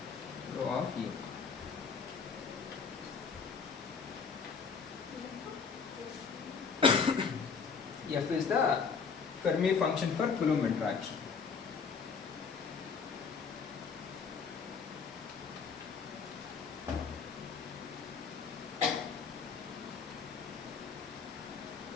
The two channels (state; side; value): quieter; right; 5.6 dB